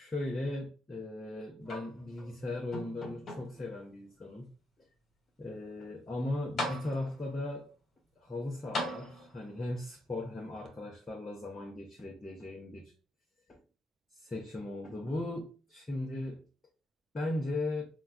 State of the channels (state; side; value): normal; both; correlation 0.81